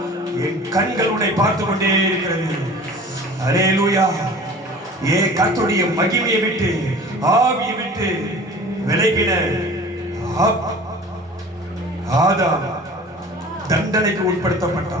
என் கண்கள் உன்னை பார்த்து கொண்டே இருக்கிறது. அல்லேலூயா. கர்த்தருடைய மகிமையை விட்டு ஆவியை விட்டு விலகின ஆதாம் தண்டனைக்கு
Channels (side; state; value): both; normal; correlation 0.43